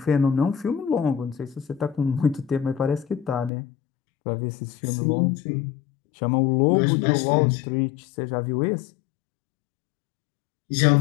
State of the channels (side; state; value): right; drops out; at 3.5 s